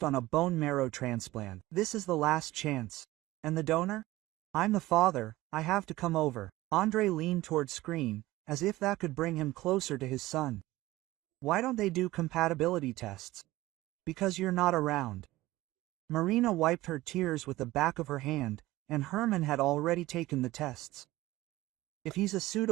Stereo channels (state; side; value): quieter; left; 17.7 dB